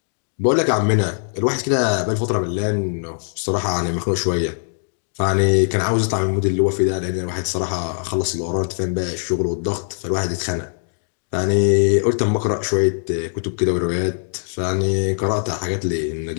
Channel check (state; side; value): silent; right; digital silence